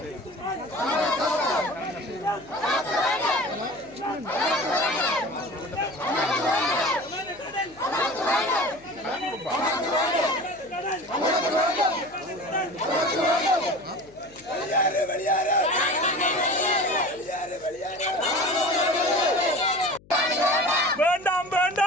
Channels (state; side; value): noise; left; hum, 26 dB below the sound